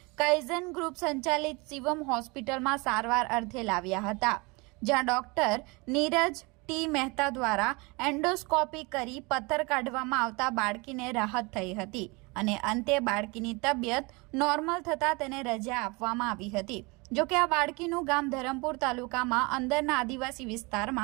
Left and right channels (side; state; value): left; quieter; 27.0 dB